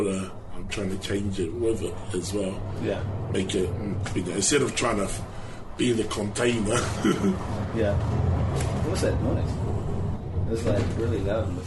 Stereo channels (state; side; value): identical; both; correlation 1.00